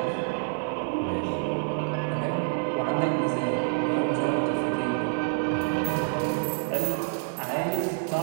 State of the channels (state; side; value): silent; left; digital silence